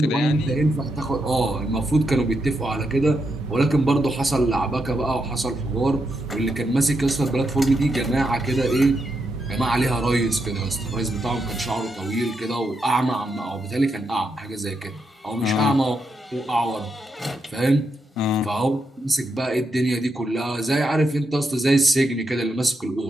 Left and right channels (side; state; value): both; normal; correlation 0.83